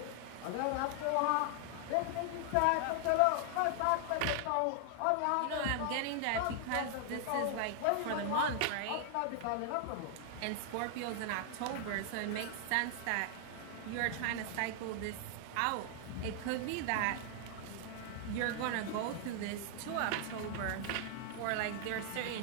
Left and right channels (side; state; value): both; different; correlation 0.00